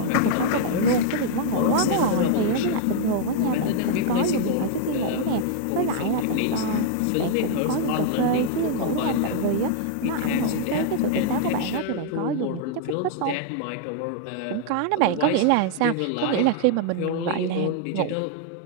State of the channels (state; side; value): different; both; correlation -0.01